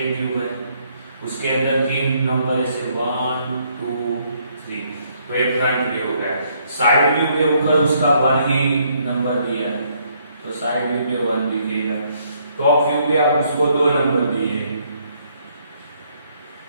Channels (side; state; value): both; inverted; correlation -0.69